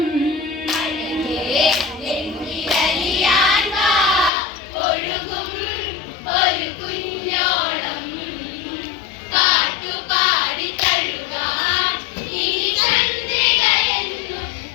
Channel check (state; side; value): drops out; right; at 4.3 s